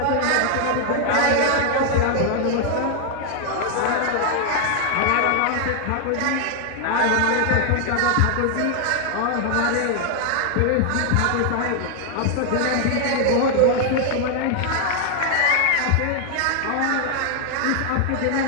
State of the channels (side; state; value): both; different; correlation 0.00